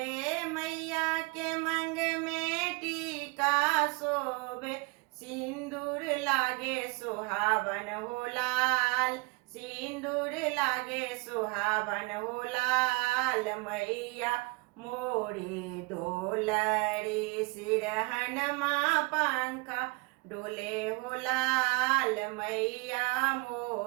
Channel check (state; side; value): quieter; left; 27.9 dB